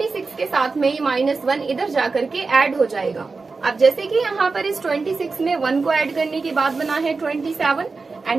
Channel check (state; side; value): quieter; left; 4.2 dB